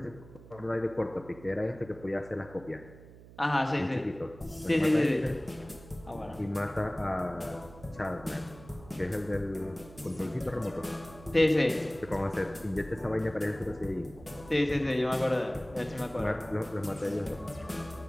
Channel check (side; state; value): right; noise; hum, 19 dB below the sound